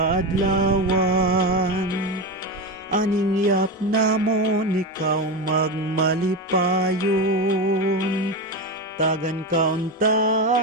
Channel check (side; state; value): both; normal; correlation 0.17